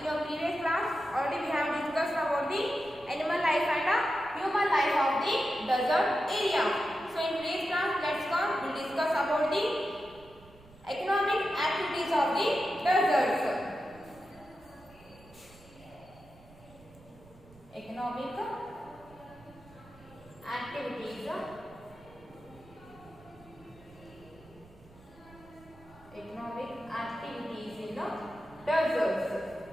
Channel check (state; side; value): noise; right; rumble, 24 dB below the sound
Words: your previous class already we have discussed about the animal life and human life of the desert area. So in today's class we'll discuss about the economic activities of the deserts. Economic activities in the deserts.